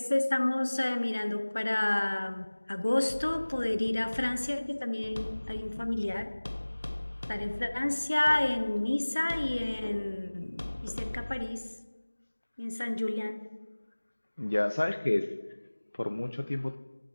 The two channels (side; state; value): both; inverted; correlation -1.00